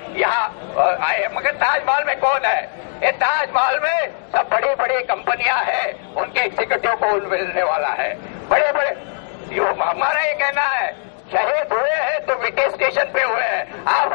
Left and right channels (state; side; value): silent; right; digital silence